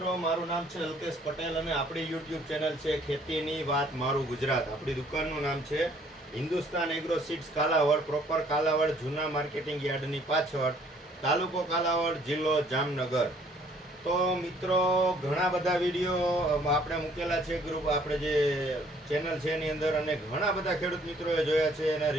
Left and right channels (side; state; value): both; normal; correlation 0.61